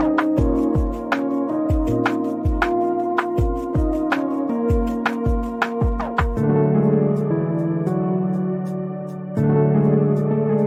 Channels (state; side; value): identical; both; correlation 1.00